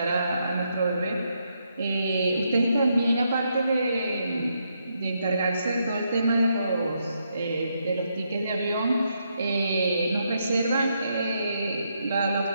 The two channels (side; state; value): both; inverted; correlation -0.79